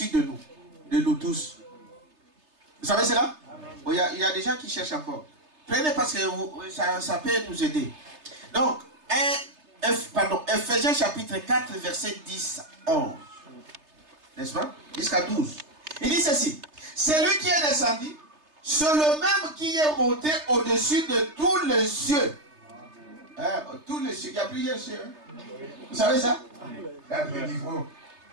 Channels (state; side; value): late; left; 3.3 ms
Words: de nous tous. Vous savez cela? Bon, il y a des gens qui cherchent encore. Prenez parce que ça peut nous aider. Donc, Ephésiens chapitre 4, verset 10, 11. N'est-ce pas? Jusqu'à 12. Il dit ceci. C'est lui qui est descendu, c'est le même qui est monté au-dessus de tous les cieux. Hein? Tous les cieux. Il y a plusieurs cieux. Hein? Vous savez ça?